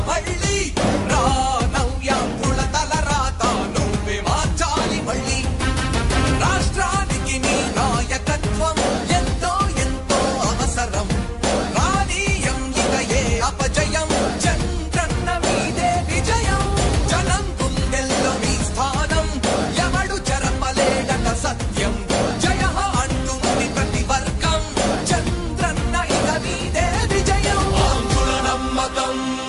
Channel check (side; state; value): both; identical; correlation 1.00